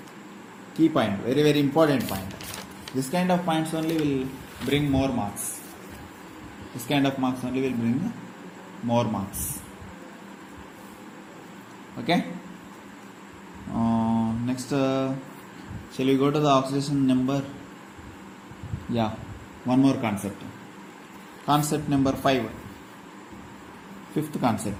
Key point, very very important point. This kind of points only will bring more marks. This kind of marks only will bring more marks. Okay. Next, shall we go to the oxidation number? Yeah, one more concept. Concept number 5. Fifth concept.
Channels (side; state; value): both; identical; correlation 1.00